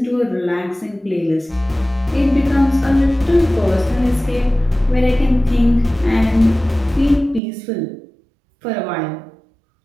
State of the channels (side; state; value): left; drops out; at 7.4 s